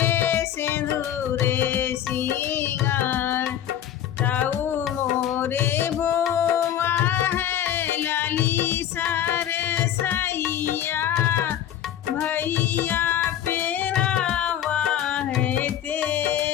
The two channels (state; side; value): quieter; right; 10.7 dB